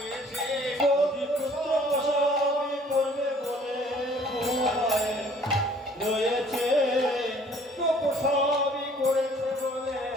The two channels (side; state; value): both; normal; correlation 0.56